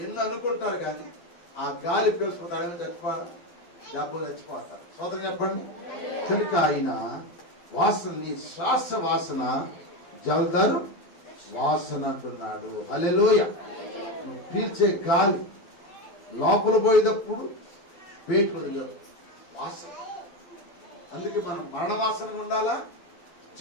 ఎన్ని అనుకుంటారు కానీ ఆ గాలి పీల్చుకుంటారు, చచ్చిపోతారు. స్తోత్రం చెప్పండి. కనుక ఆయన వాసన, నీ శ్వాస వాసన జలధర్ వాసన అంటున్నాడు. హల్లెలూయా. నువ్వు పీల్చే గాలి లోపల పోయేటప్పుడు పేటు వదిలేదు వాసన. అందుకే మనం మరణ వాసనగా ఉండాలా,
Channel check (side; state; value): right; late; 12 ms